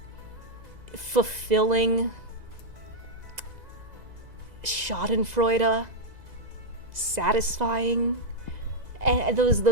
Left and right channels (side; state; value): left; late; 2.0 ms